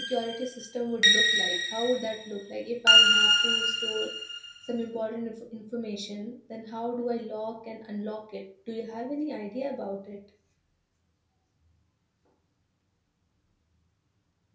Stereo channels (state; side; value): identical; both; correlation 1.00